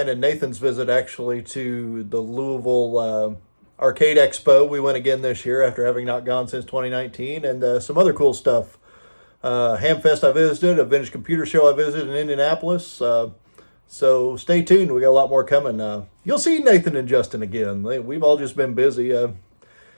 and Nathan's visit actually to the Louisville Arcade Expo. We went again this year after having not gone since 2019, and some other cool stuff. Hamfest I visited, a vintage computer show I visited in Indianapolis. So stay tuned. We got a lot more coming. You'll see Nathan and Justin again. We've all just been busy. In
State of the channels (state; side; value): inverted; both; correlation -1.00